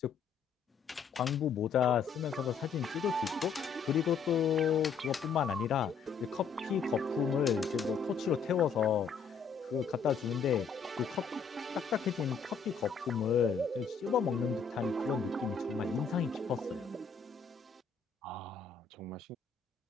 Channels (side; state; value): right; quieter; 6.0 dB